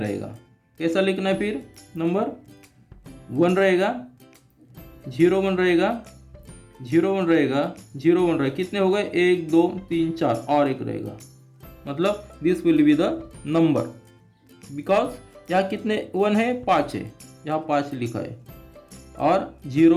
कैसा लिखना है फिर? नंबर 1 रहेगा, 0 1 रहेगा, 0 1 रहेगा, 0 1 रहेगा। कितने हो गए? 1 2 3 4 और एक रहेगा। मतलब this will be the number, because यहाँ कितने 1 है? 5 है, यहाँ 5 लिखा है। और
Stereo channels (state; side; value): identical; both; correlation 1.00